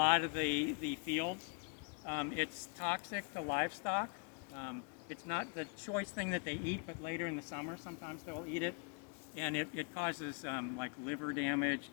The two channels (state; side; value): quieter; right; 37.2 dB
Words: of the fields. It's toxic to livestock. It's not the choice thing that they eat, but later in the summer sometimes they'll eat it. And it causes like liver damage,